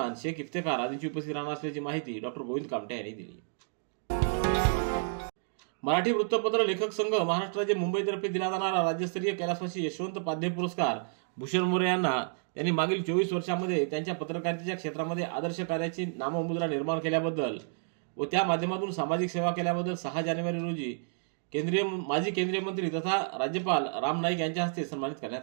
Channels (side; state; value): left; silent; digital silence